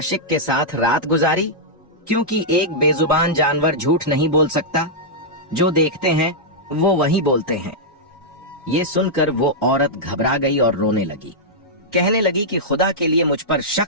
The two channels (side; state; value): both; normal; correlation -0.08